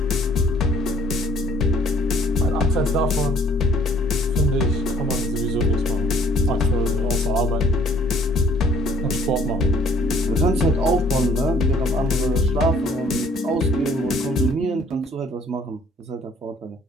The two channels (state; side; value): normal; both; correlation 0.59